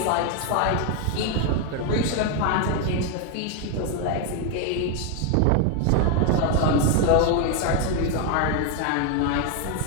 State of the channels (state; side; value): different; both; correlation 0.01